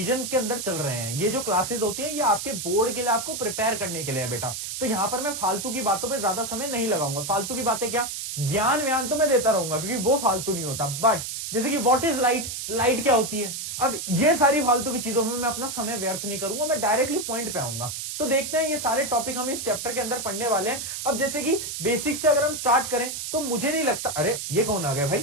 के अंदर चल रहे हैं। ये जो क्लासेस होती है ये आपके बोर्ड के लिए, आपको प्रिपेयर करने के लिए है बेटा। तो यहां पर मैं फालतू की बातों पे ज्यादा समय नहीं लगाऊंगा। फालतू की बातें क्या, ज्ञान व्यान तो मैं देता रहूंगा क्योंकि वो फालतू नहीं होता। बट जैसे कि व्हाट इज लाइट, लाइट क्या होती है, अब ये सारी फालतू की चीजों में मैं अपना समय व्यर्थ नहीं करूंगा, मैं डायरेक्टली पॉइंट पे आऊंगा। तो देखते हैं ये सारे टॉपिक हम इस चैप्टर के अंदर पढ़ने वाले हैं। अब जैसे कि बेसिक से अगर हम स्टार्ट करें तो मुझे नहीं लगता, अरे ये कौन आ गया भाई,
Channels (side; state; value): right; noise; hiss, 5 dB below the sound